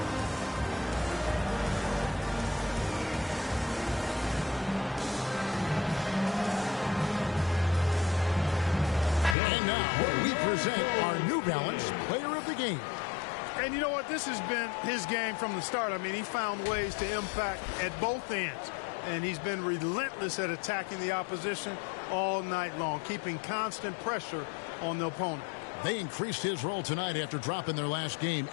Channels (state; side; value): drops out; right; at 9.3 s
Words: Our New Balance Player of the Game. And you know what? This has been his game from the start. I mean, he found ways to impact at both ends. And he's been relentless at attacking the opposition all night long, keeping constant pressure on the opponent. They increased his role tonight after dropping their last game,